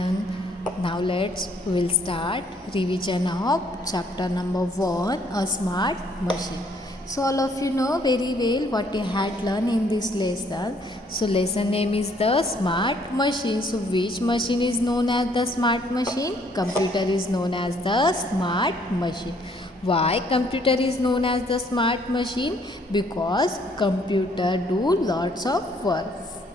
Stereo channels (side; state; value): both; normal; correlation 0.65